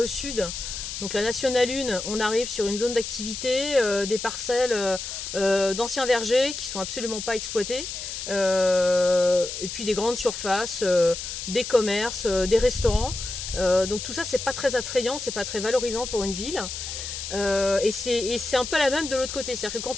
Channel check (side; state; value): left; noise; hiss, 7 dB below the sound